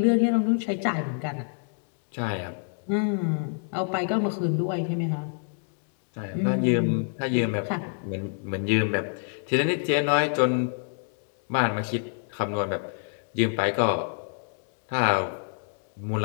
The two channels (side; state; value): right; silent; 60 dB below the other